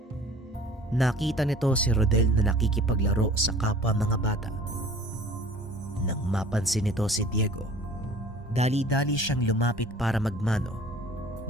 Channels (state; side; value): normal; both; correlation 0.47